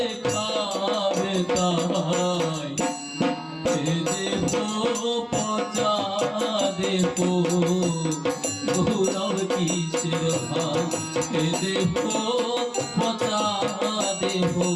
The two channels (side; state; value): both; identical; correlation 1.00